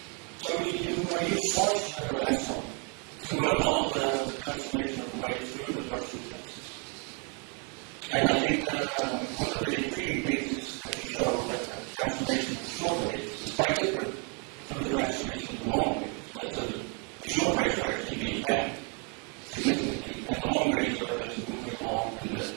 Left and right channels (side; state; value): left; quieter; 36.6 dB